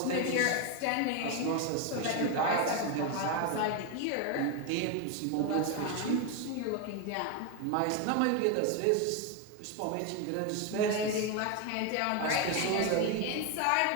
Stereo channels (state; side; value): different; both; correlation 0.02